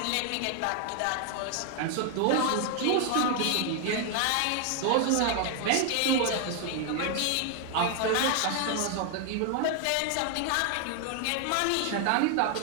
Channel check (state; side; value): different; both; correlation 0.00